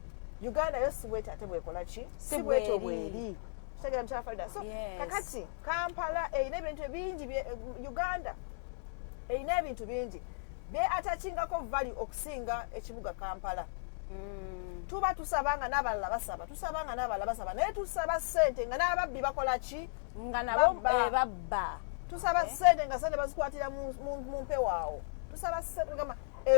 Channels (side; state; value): right; silent; digital silence